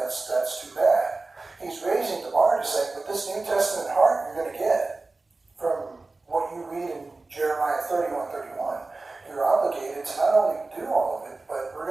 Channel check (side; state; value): left; quieter; 3.5 dB